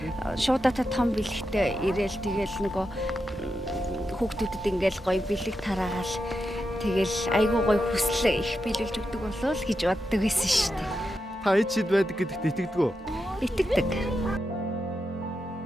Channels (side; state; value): both; normal; correlation 0.87